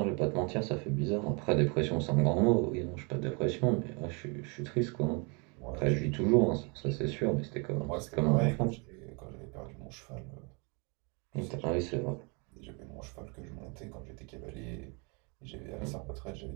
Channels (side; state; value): left; quieter; 32.5 dB